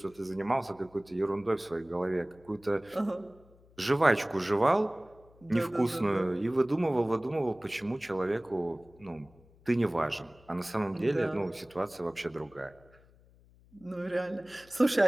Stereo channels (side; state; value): left; noise; hum, 27 dB below the sound